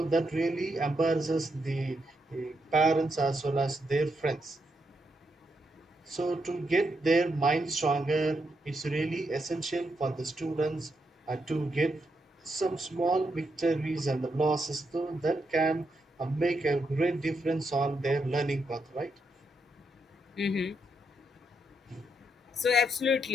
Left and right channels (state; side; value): normal; both; correlation 0.81